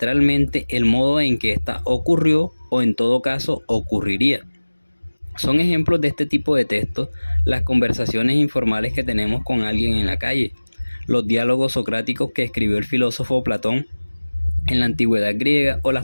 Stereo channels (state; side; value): inverted; both; correlation -1.00